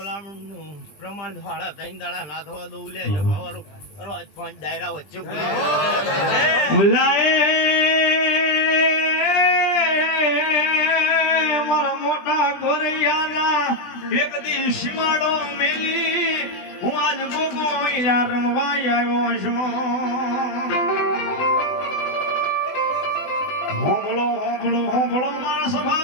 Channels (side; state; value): right; late; 20 ms